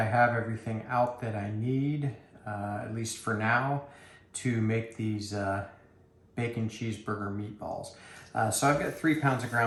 have everything out that I need, at least for now, to make these bacon cheeseburger meatballs. So I've got 3 pounds of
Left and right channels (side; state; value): both; identical; correlation 1.00